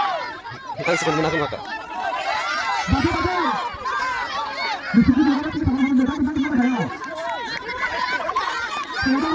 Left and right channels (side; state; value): both; identical; correlation 1.00